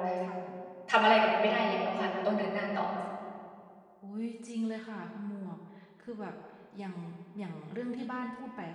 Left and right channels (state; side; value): identical; both; correlation 1.00